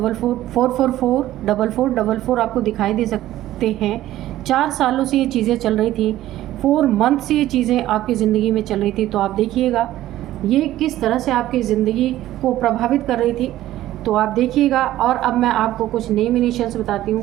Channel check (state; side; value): quieter; left; 14.3 dB